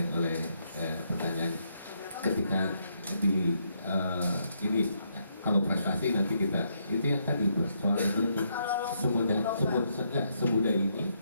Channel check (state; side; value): inverted; both; correlation -0.76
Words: oleh pertanyaan ketika di ini kalau prestasi nanti kita itu yang tadi soal itu semudah ini